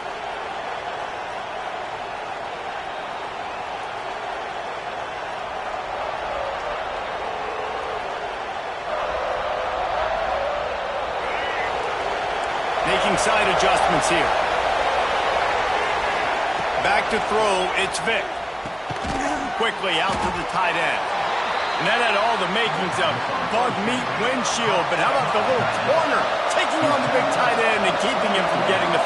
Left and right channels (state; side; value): identical; both; correlation 1.00